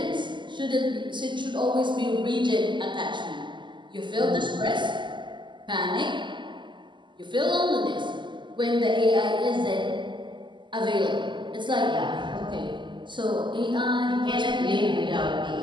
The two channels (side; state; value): left; late; 0.23 ms